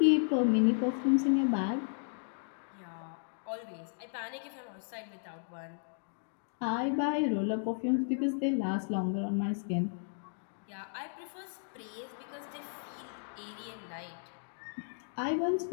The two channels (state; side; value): silent; right; digital silence